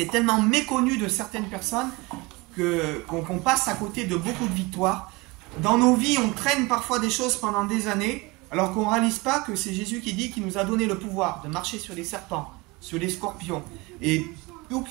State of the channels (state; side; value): quieter; left; 24.4 dB